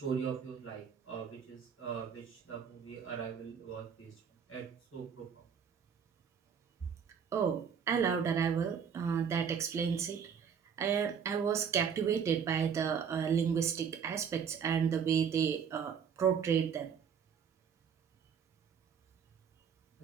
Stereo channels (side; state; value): left; quieter; 7.1 dB